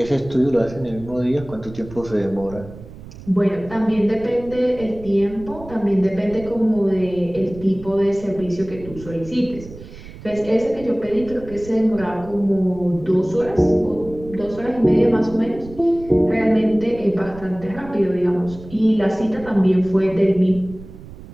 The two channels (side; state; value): right; noise; rumble, 16 dB below the sound